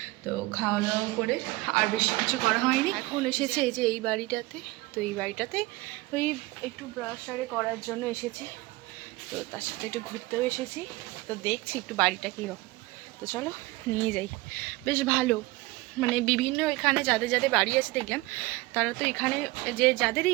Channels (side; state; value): left; quieter; 21.0 dB